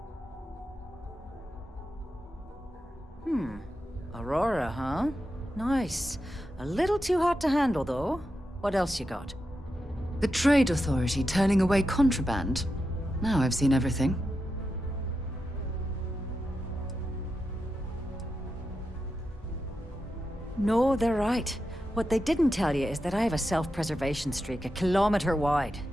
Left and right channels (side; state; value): both; normal; correlation 0.88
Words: Aurora, huh? Nice. A little too hot to handle, though. What else you got? The Trade Authority turning away contraband. Now I've seen everything. No, they're right. What they didn't tell you is that I have a self-preservation streak a kilometer wide.